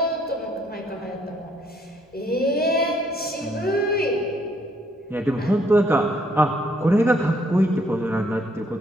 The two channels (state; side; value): normal; both; correlation 0.68